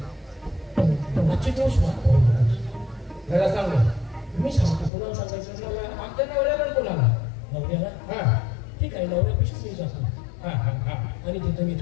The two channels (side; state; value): right; drops out; at 4.9 s